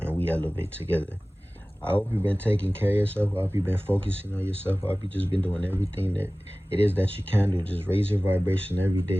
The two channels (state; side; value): normal; both; correlation 0.98